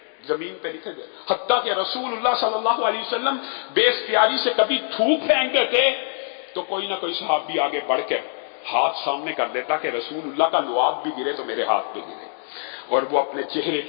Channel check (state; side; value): silent; right; digital silence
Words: زمین پہ نیچے گر، حتیٰ کہ رسول اللہ صلی اللہ علیہ وسلم بے اختیاری سے کبھی تھوک پھینکتے تھے تو کوئی نہ کوئی صحابی آگے بڑھ کر ہاتھ سامنے کر دیتا کہ رسول اللہ کا لعاب بھی گرے تو میرے ہاتھ پہ گرے، اور وہ اپنے چہرے